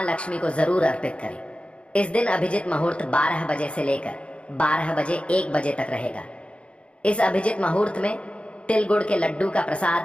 लक्ष्मी को जरूर अर्पित करें। इस दिन अभिजित मुहूर्त 12 बजे से लेकर 12 बजे 1 बजे तक रहेगा। इस अभिजित मुहूर्त में तिल गुड़ के लड्डू का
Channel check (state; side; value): late; right; 0.060 ms